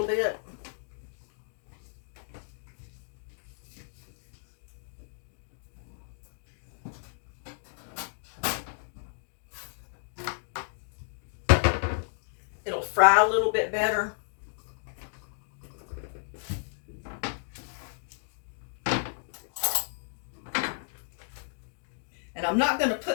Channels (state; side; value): silent; right; digital silence